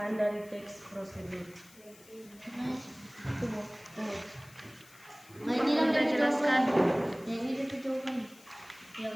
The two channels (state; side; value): noise; left; hiss, 23 dB below the sound